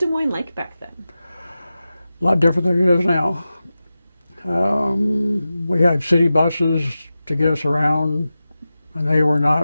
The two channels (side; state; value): both; inverted; correlation -0.94